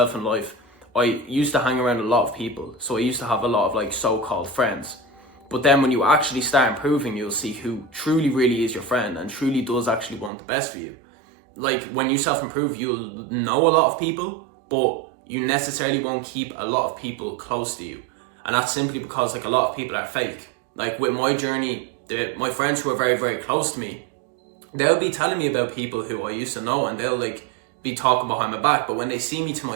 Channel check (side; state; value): left; drops out; at 10.3 s